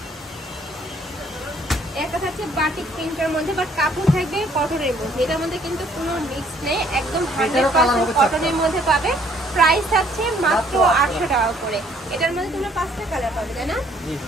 একটা থাকছে বাটিক প্রিন্টের মধ্যে, বাট কাপড় থাকবে কটনের মধ্যে। এটার মধ্যে কিন্তু কোনো মিক্স নেই, একদম 100% কটনের মধ্যে পাবে। প্রাইস থাকছে মাত্র 800 টাকা করে। এটার মধ্যে তোমরা 5টা কালার পাবে, তাই না? জি।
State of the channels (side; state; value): both; normal; correlation 0.62